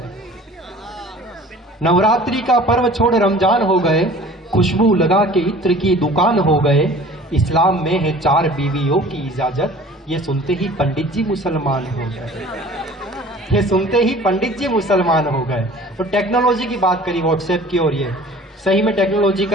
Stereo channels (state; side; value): normal; both; correlation 0.46